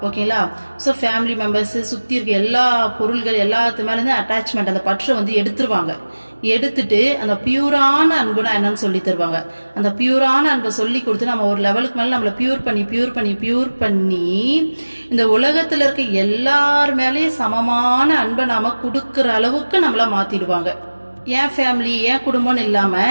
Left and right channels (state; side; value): inverted; both; correlation -1.00